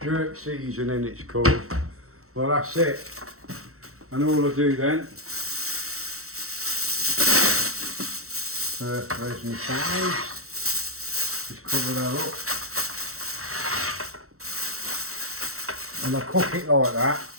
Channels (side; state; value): left; late; 0.64 ms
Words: Jerk seasoning, it's called. Well, that's it. And all I do then. Where's my size? Just cover that up. And I cook it like that